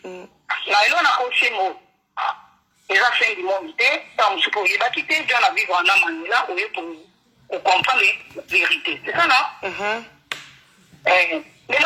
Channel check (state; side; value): identical; both; correlation 1.00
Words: on a aussi un mot. Les affaires du monde, on se peut pas quitter, on a vivre en Amman, là, pour comprendre la vérité. C'est ça, non? Mais là,